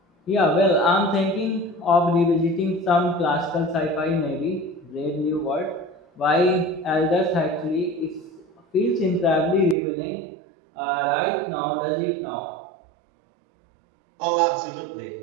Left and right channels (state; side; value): drops out; left; at 9.8 s